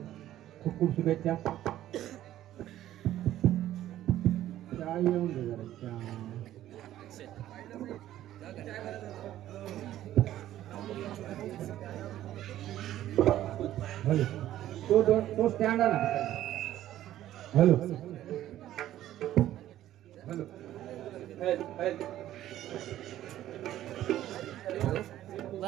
खूप खूप शुभेच्छा. चहा येऊन दे जरा चहा. हॅलो तो स्टँड आला. हॅलो हॅलो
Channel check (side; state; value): left; quieter; 13.1 dB